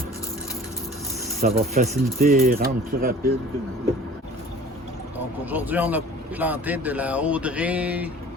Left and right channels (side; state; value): both; normal; correlation 0.46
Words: Ça va faciliter et rendre plus rapide. Donc aujourd'hui, on a planté de la Audrey,